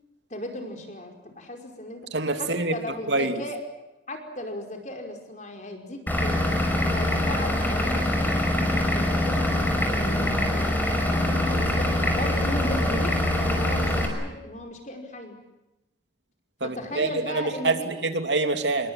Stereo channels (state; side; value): normal; both; correlation 0.49